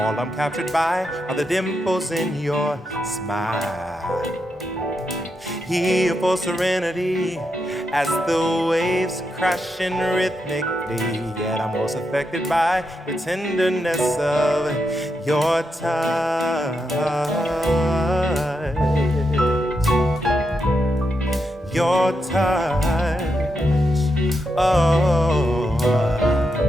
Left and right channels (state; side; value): normal; both; correlation 0.84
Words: I'm captured by are the dimples in your smile. Here for serenity as the waves crashing rhythmically, yet I'm most affected by the tenderness of your touch. Your touch, oh.